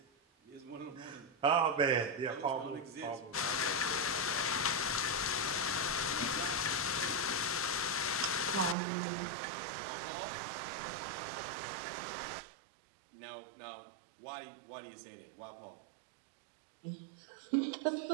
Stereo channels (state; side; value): drops out; left; at 8.8 s